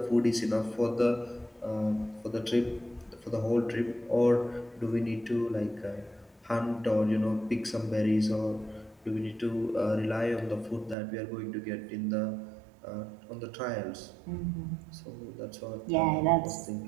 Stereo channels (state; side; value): drops out; left; at 11.0 s